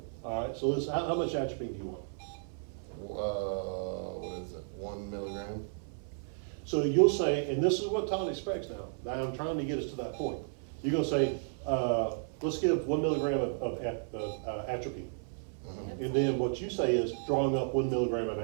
All right, so how much atropine do you want? What is it, 1 milligram? So you'll say, and this is what Todd expects now. Now I'm trying to get us to that point. You're gonna say, let's give 1 milligram of atropine. Mhm. And then what you say is drawing up 1 milligram of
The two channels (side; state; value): left; silent; 56 dB below the other